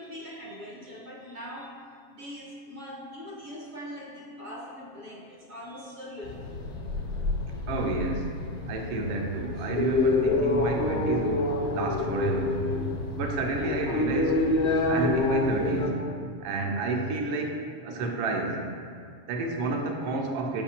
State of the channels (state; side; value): late; left; 7.3 ms